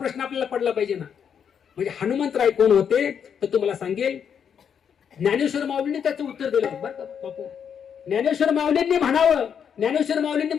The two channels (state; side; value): quieter; right; 7.7 dB